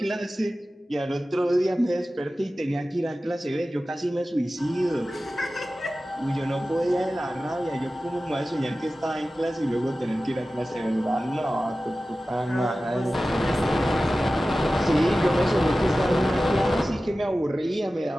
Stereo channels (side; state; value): both; normal; correlation 0.95